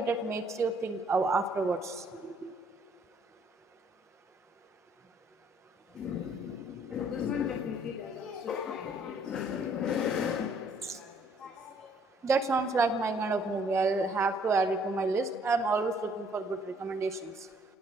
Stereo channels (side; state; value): both; normal; correlation 0.63